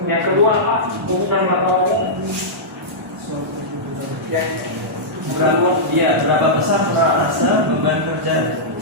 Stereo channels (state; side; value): normal; both; correlation -0.12